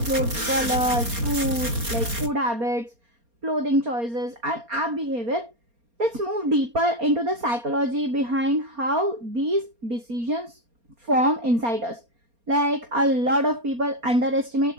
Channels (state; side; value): late; left; 4.3 ms